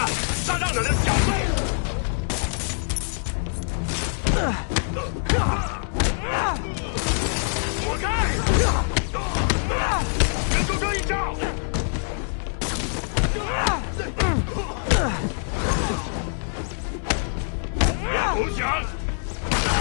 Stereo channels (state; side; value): silent; right; digital silence